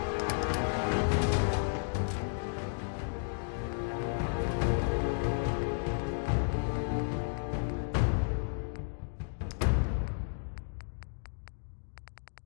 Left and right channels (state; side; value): silent; right; digital silence